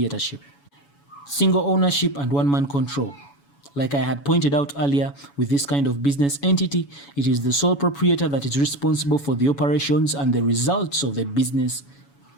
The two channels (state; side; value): late; right; 7.1 ms